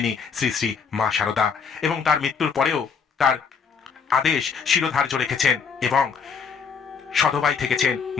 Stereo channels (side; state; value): right; quieter; 6.1 dB